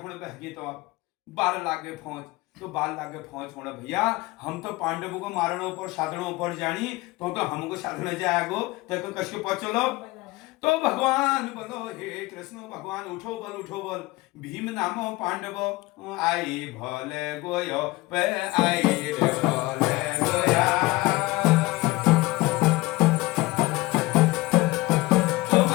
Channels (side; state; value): right; quieter; 20.9 dB